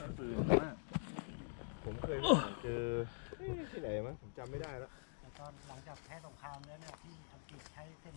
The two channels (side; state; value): right; silent; digital silence